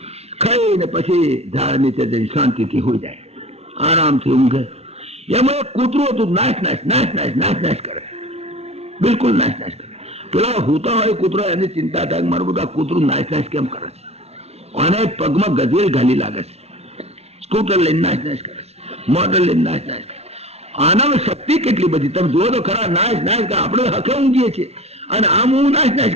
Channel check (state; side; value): late; left; 0.31 ms